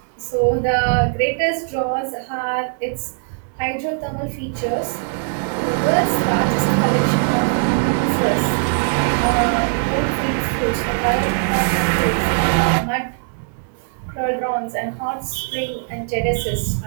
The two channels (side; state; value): left; silent; 64 dB below the other